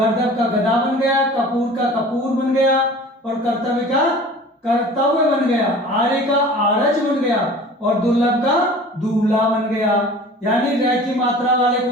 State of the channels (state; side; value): normal; both; correlation 0.43